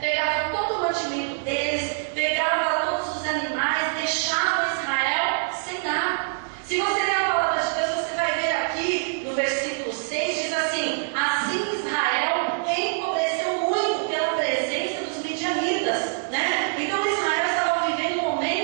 todo o mantimento deles, pegavam todos os animais, deixavam Israel sem nada. Se você ler a palavra de Deus, você vai ver aqui no versículo 6, diz assim: assim Israel empobreceu muito pela presença dos midianitas, né? Então Israel estava vivendo um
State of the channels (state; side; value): silent; left; digital silence